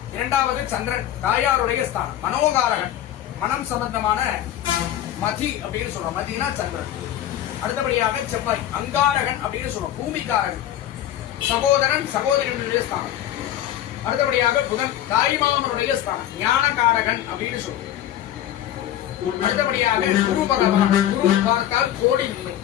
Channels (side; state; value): right; quieter; 12.0 dB